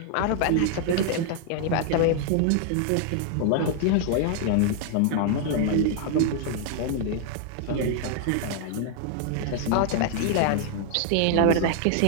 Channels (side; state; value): both; different; correlation 0.00